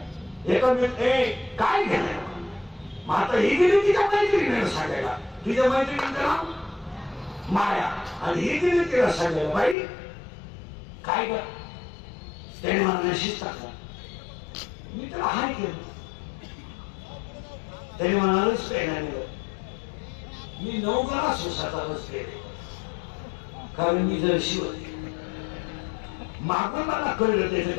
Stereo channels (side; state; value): right; drops out; at 9.8 s